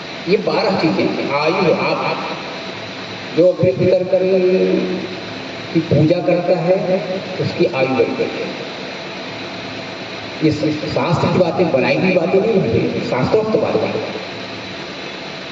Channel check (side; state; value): both; identical; correlation 1.00